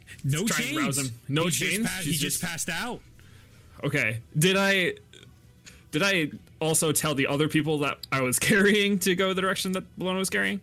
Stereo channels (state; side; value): identical; both; correlation 1.00